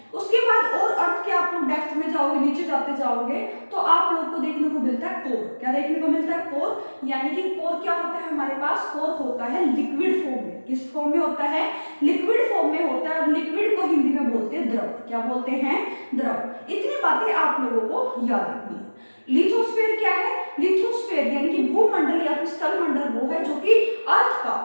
उसके बाद और अर्थ के आप लोग डेप्थ में जाओगे, नीचे जाते जाओगे, तो आप लोग को देखने को मिलता है कोर। क्या देखने को मिलता है, कोर। यानी कि कोर क्या होता है हमारे पास, कोर होता है लिक्विड फॉर्म में। किस फॉर्म में होता है, लिक्विड फॉर्म में होता है। और लिक्विड को हिंदी में बोलते हैं द्रव। क्या बोलते हैं, द्रव। इतनी बातें आप लोगों को याद रखनी है। लिथोस्फीयर क्या है, लिथोस्फीयर यानी कि भूमंडल या फिर स्थलमंडल वो है जो कि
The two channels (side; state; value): both; inverted; correlation -1.00